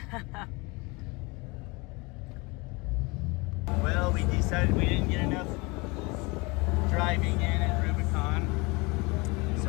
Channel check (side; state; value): right; quieter; 26.4 dB